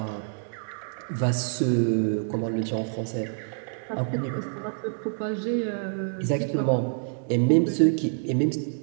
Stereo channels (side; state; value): left; silent; digital silence